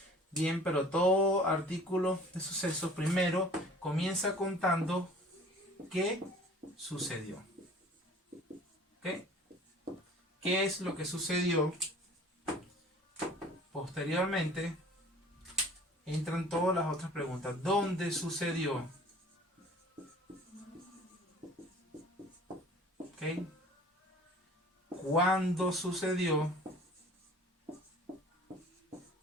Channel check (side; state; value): both; normal; correlation 0.48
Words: bien, pero todo artículo de sucesos primero comienza contando qué sucedió. ¿Ok? ¿Qué es lo que sucedió? Posteriormente entran todas las otras preguntas. ¿Dónde sucedió? ¿Ok? ¿Cuándo sucedió?